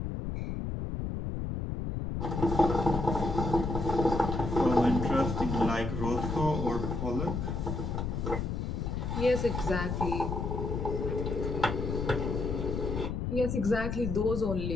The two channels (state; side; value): noise; left; rumble, 3 dB below the sound